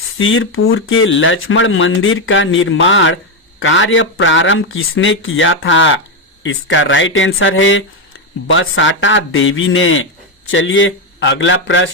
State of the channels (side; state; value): both; normal; correlation 0.07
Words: के लक्ष्मण मंदिर का निर्माण कार्य प्रारंभ किसने किया था? इसका राइट आंसर है बसाटा देवी ने। चलिए अगला